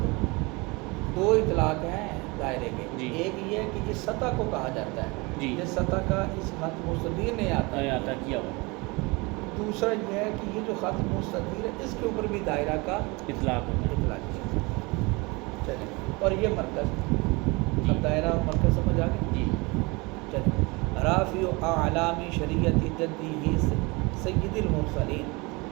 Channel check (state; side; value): quieter; left; 26.2 dB